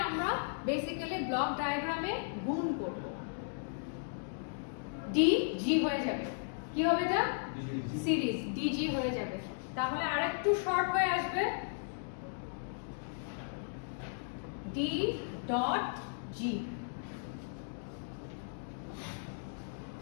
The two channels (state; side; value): silent; right; digital silence